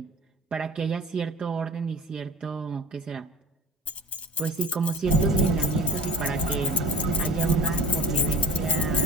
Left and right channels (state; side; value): normal; both; correlation 0.39